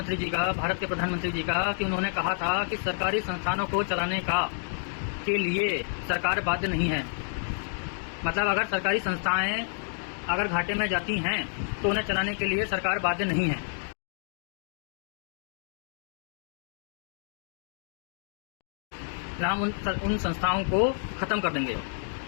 जी का, भारत के प्रधानमंत्री जी का, कि उन्होंने कहा था कि सरकारी संस्थानों को चलाने के लिए सरकार बाध्य नहीं है। मतलब अगर सरकारी संस्थाएं अगर घाटे में जाती हैं तो उन्हें चलाने के लिए सरकार बाध्य नहीं है। हम उन संस्थाओं को ख़त्म कर देंगे।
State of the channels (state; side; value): silent; right; digital silence